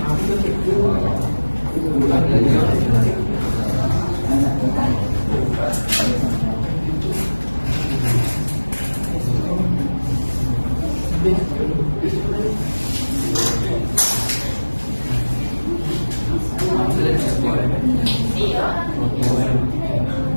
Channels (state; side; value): inverted; both; correlation -1.00